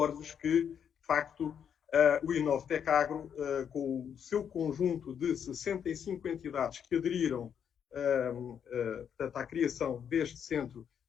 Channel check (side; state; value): right; quieter; 8.1 dB